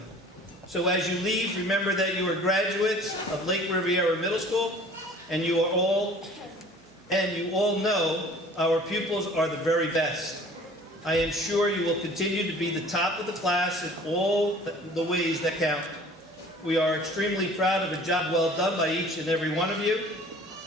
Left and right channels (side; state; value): right; noise; hum, 29 dB below the sound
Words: So as you leave, remember that you are graduates of Lake Riviera Middle School, and you all know our pupils are the very best. I am sure you will continue to be the top of the class in all the ways that count. We are extremely proud of a job well done by each and every one of you.